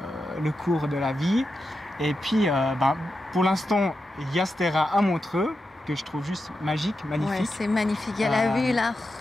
le cours de la vie. Et puis, pour l'instant, il y a ce terrain à Montreux, que je trouve juste magique, magnifique. Ouais, c'est magnifique, il y a la vue là.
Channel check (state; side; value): normal; both; correlation 0.89